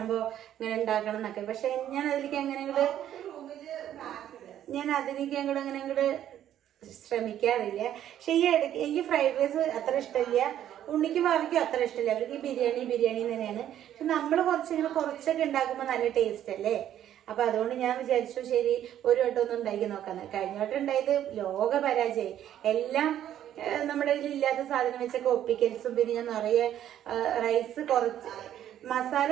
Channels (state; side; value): quieter; left; 11.1 dB